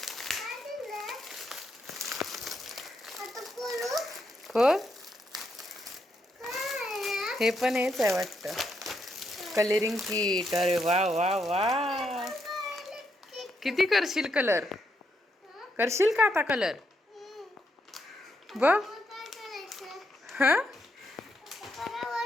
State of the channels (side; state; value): both; normal; correlation 0.79